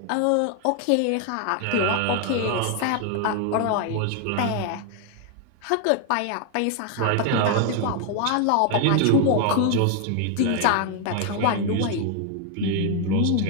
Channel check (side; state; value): both; different; correlation 0.00